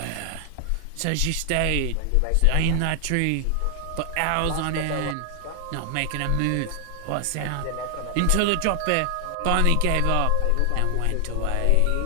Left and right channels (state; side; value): different; both; correlation 0.00